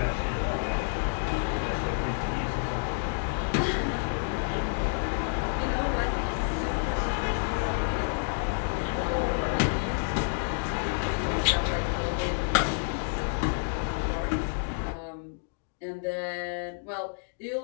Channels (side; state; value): right; silent; digital silence